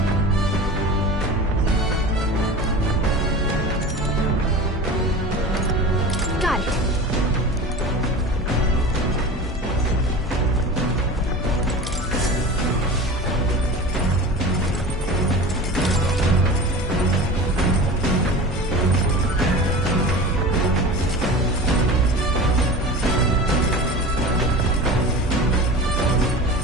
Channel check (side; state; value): both; normal; correlation 0.33